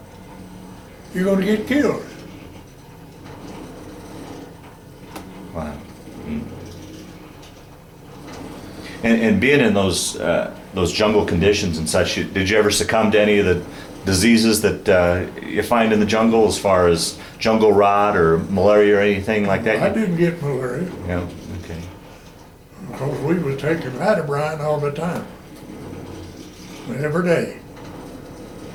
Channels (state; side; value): identical; both; correlation 1.00